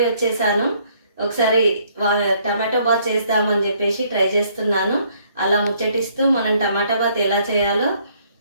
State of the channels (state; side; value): inverted; both; correlation -0.66